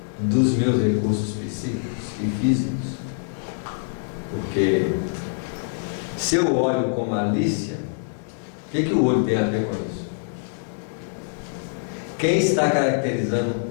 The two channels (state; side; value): silent; right; digital silence